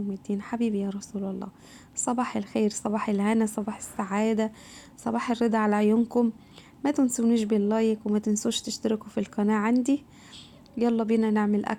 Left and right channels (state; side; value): identical; both; correlation 1.00